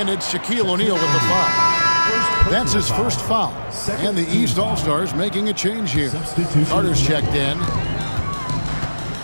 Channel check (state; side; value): inverted; both; correlation -1.00